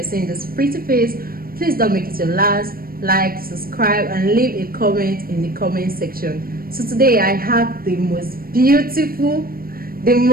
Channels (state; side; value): late; left; 0.43 ms